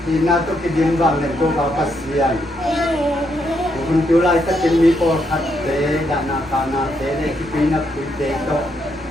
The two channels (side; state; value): both; normal; correlation 0.77